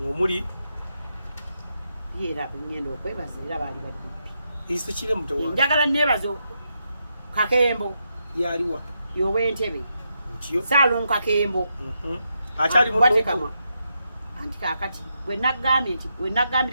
omuli yeera ngenda okwebaza era baali baddipi isikire mutawa njagala neebaza Kakembo yaliwa y'ow'Entebe mutyo Salum Kakembo akyali mu Bwatekamwa anti kaakati bwe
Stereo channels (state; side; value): inverted; both; correlation -0.83